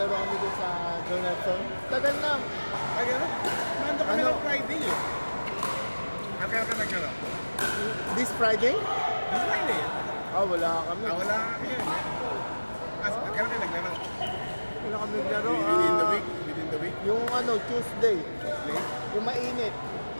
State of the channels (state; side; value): inverted; both; correlation -1.00